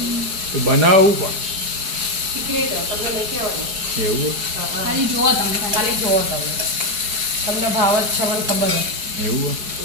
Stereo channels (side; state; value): left; late; 4.7 ms